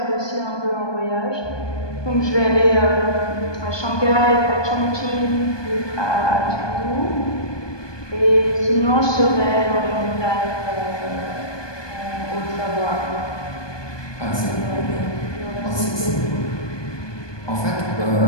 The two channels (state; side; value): late; right; 1.2 ms